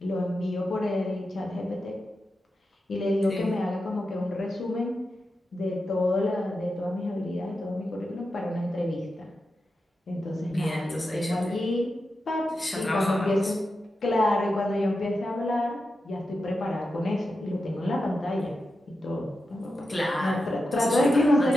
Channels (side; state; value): both; normal; correlation 0.89